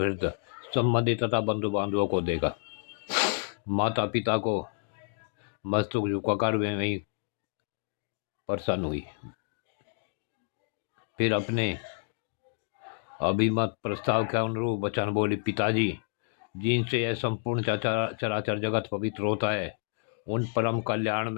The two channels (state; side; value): silent; right; digital silence